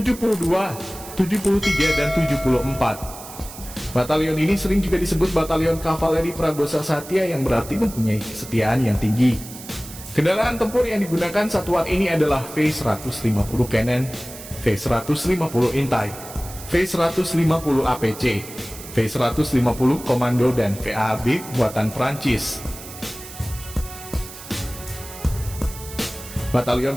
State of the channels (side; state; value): right; noise; hiss, 14 dB below the sound